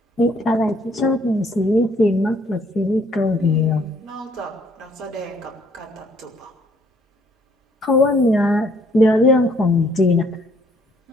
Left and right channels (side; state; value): both; normal; correlation 0.64